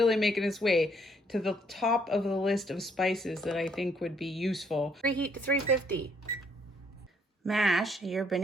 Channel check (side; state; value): both; normal; correlation 0.68